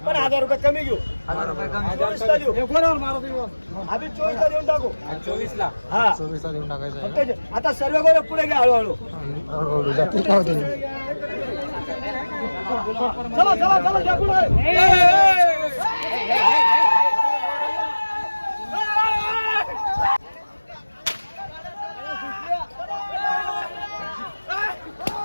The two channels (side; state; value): both; inverted; correlation -1.00